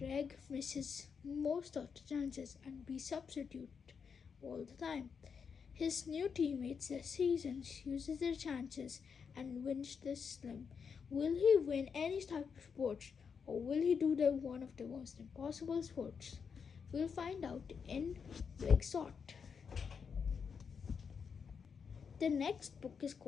misses most of the chances and be substitute all the time. His new teammates this season uses their chances and wins the slim. Will he win any type of sports, or will he do one of the most impossible sports? We'll find out in Big Shot. The next book is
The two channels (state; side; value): quieter; right; 6.2 dB